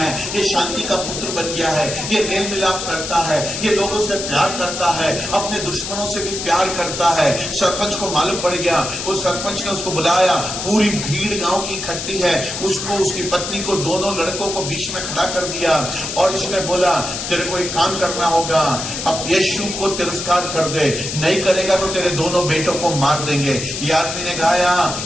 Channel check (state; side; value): noise; left; hiss, 5 dB below the sound